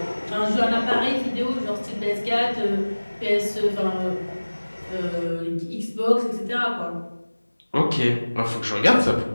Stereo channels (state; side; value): inverted; both; correlation -1.00